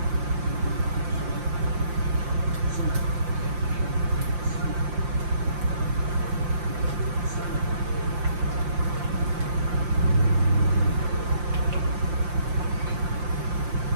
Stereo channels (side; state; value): left; late; 5.7 ms